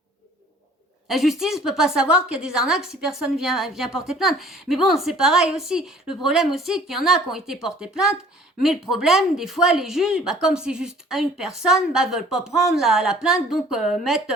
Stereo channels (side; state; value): both; normal; correlation 0.52